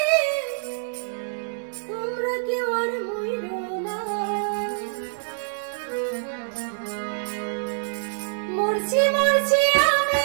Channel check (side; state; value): left; silent; 61 dB below the other